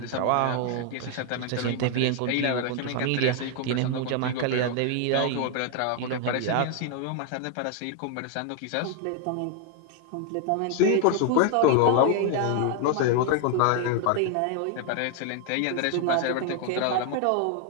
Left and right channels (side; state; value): both; different; correlation 0.01